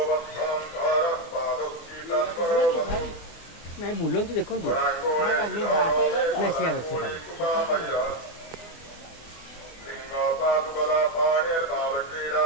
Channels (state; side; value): late; right; 24 ms